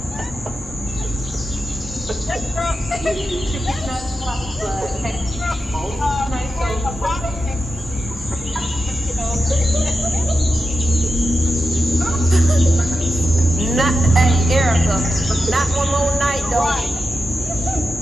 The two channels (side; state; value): both; normal; correlation 0.90